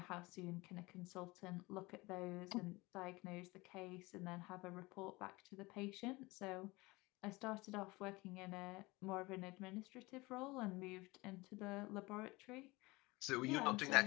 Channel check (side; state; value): right; quieter; 22.6 dB